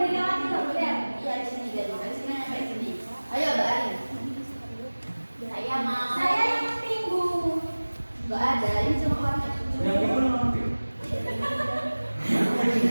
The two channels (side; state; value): both; inverted; correlation -1.00